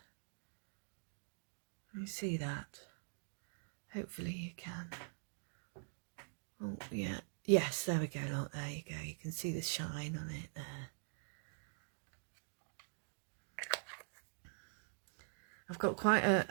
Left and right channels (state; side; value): silent; left; digital silence